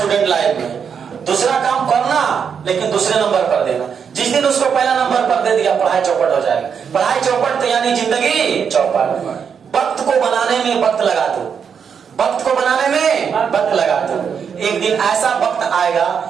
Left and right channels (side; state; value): left; quieter; 6.9 dB